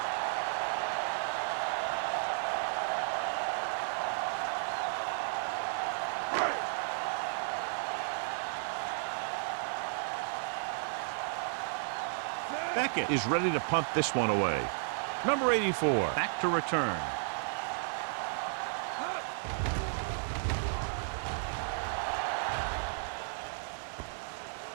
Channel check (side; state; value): left; silent; digital silence